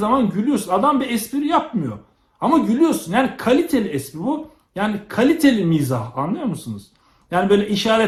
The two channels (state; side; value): identical; both; correlation 1.00